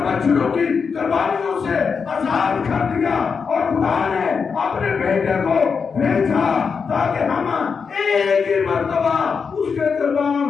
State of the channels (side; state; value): right; quieter; 5.7 dB